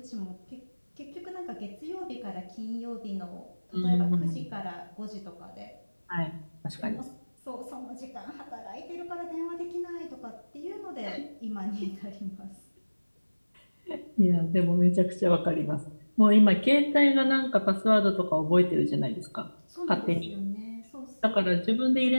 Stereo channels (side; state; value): both; inverted; correlation -1.00